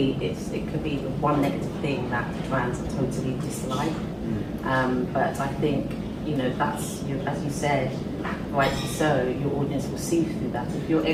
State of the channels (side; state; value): both; identical; correlation 1.00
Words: it could be the one negative thing that fans totally dislike, but I think that's, as you said, rightly so, your audience will see through that.